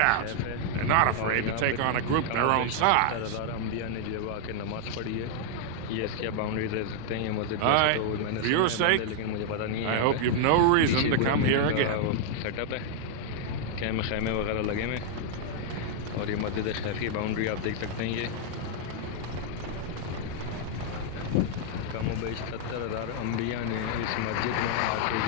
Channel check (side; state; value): both; different; correlation -0.01